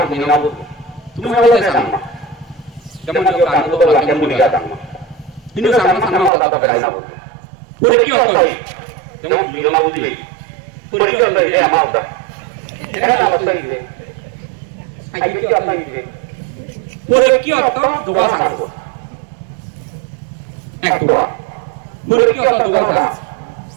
না বলবো তুমি বলতে চাও না যেমন যে কাজ তো বলা কেমন বলি দাও না কিন্তু সামনে সামনে কথা বলাই না বলবো পরীক্ষা হবে যেমন বিনা বুঝি পরীক্ষা হলে এ আমার দাও এটা অবস্থা কি আগে কি অবস্থা কি পরীক্ষা অর্থ দোয়া সাংব এক দোয়া পরীক্ষা অর্থ দোয়া সাংব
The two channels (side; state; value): left; drops out; at 6.3 s